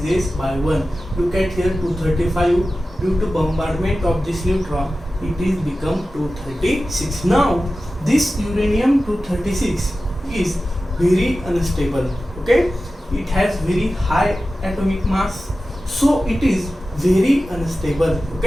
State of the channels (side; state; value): both; normal; correlation 0.94